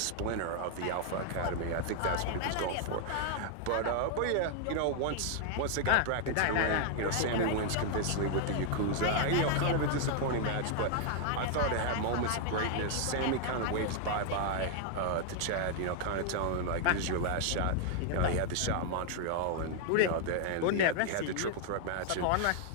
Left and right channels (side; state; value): both; different; correlation 0.00